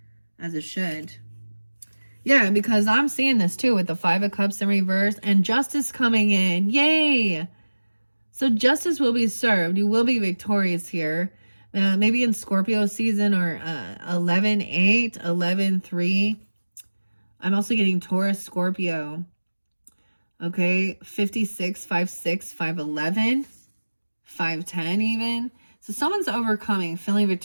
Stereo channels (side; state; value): both; inverted; correlation -1.00